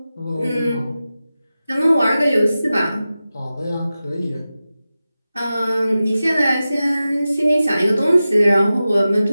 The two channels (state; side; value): inverted; both; correlation -0.94